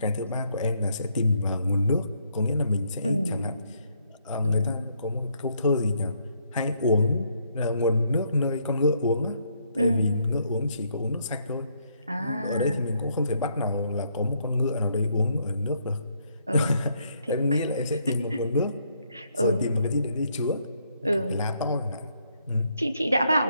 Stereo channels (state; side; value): inverted; both; correlation -0.72